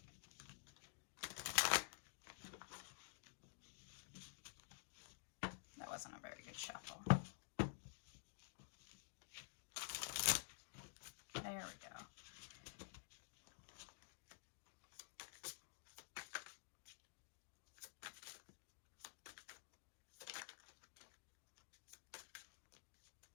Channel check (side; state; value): right; silent; digital silence